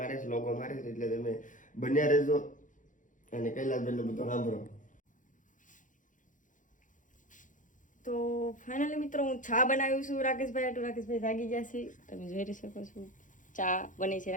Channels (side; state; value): right; late; 0.37 ms